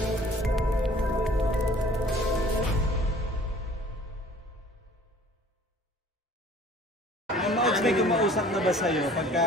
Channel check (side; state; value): both; normal; correlation 0.51